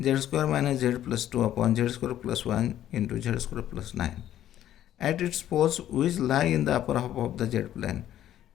z square minus z plus 2 upon z square plus 1 into z square plus 9 at its poles which lie in the upper half of the z plane.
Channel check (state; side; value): quieter; right; 11.9 dB